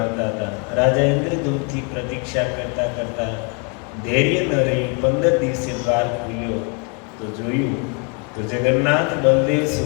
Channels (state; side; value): quieter; right; 36.3 dB